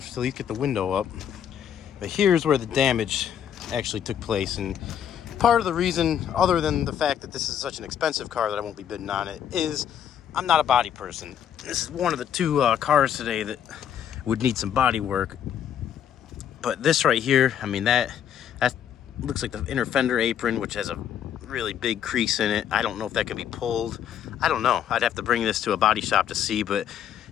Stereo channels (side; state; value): right; quieter; 9.3 dB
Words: to at least get the window up. But here's where the damage actually took place. And part of the reason, other than the fact that this is such an expensive car that I won't be bidding on it, is I'm not a body person. This is one of the two cars today that would need some body work. But this right here, I mean, that looks like the inner fender apron, which has a really big crease in it. I don't know if that can be pulled. I don't know. I'd have to bring this to a body shop to see, but